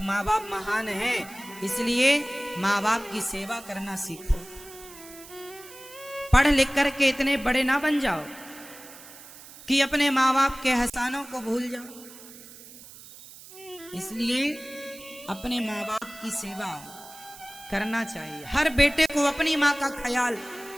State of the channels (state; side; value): noise; right; hiss, 18 dB below the sound